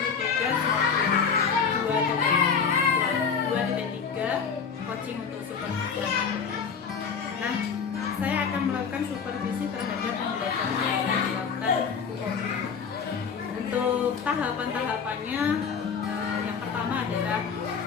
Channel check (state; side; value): quieter; right; 6.2 dB